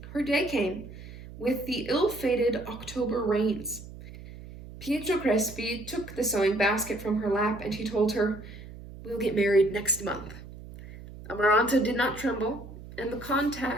Her day came, with the ill-fated October rains. Pietro Crespi took the sewing basket from her lap, and he told her, "We'll get married next month." Amaranta did not tremble, and the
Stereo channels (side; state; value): right; noise; hum, 15 dB below the sound